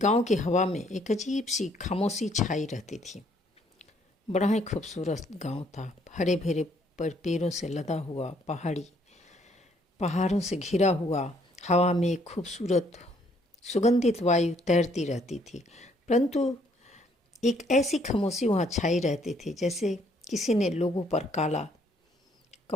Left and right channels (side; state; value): both; normal; correlation 0.66